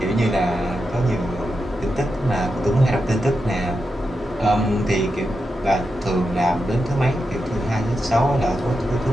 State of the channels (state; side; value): normal; both; correlation 0.88